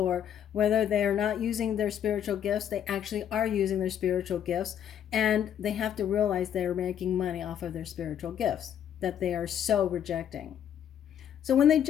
whether they are not using their spiritual gifts, they actually are using their spiritual gifts, and they have to realize they're making money off of their spiritual gifts that they are so rejecting. So when they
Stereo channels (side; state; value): right; quieter; 9.5 dB